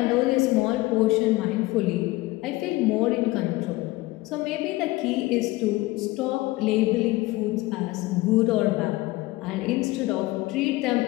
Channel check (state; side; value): quieter; right; 19.7 dB